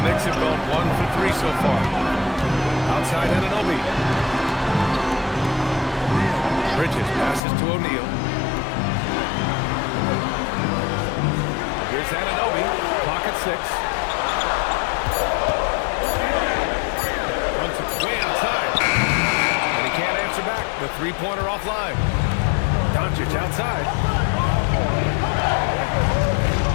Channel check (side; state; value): right; drops out; at 7.4 s